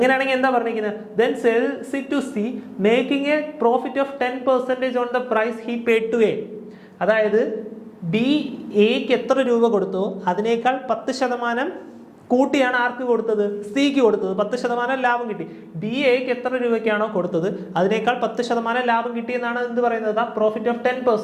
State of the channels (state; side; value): identical; both; correlation 1.00